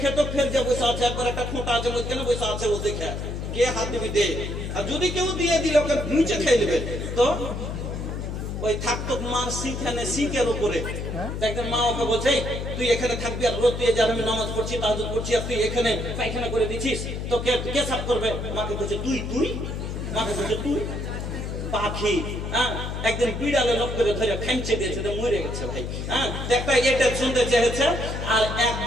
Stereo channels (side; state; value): left; noise; hum, 5 dB below the sound